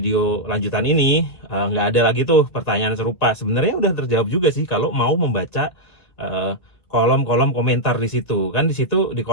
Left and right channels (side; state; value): right; late; 1.9 ms